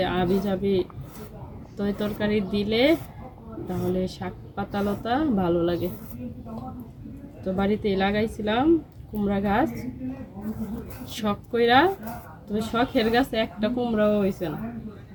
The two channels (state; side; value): identical; both; correlation 1.00